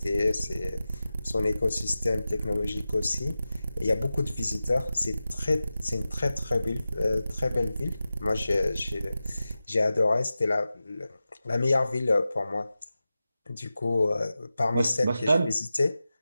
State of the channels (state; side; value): inverted; both; correlation -0.94